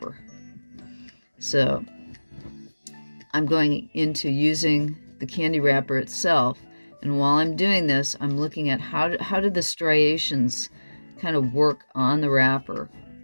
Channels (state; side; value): inverted; both; correlation -1.00